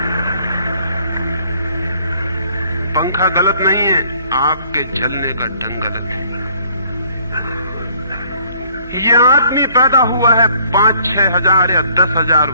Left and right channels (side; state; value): both; inverted; correlation -0.61